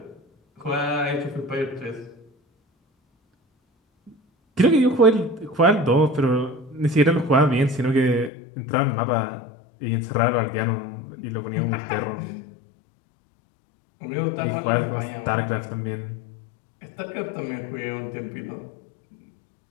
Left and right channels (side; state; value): right; drops out; at 8.3 s